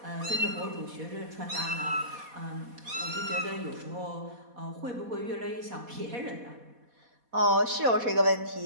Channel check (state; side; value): late; left; 4.2 ms